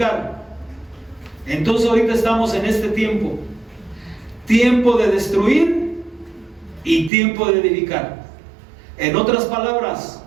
Entonces ahorita estamos en este tiempo: tiempo de destruir y tiempo de edificar. En otras palabras,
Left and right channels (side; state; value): left; drops out; at 7.1 s